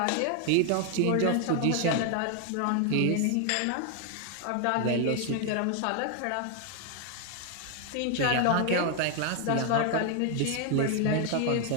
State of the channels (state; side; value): different; both; correlation 0.01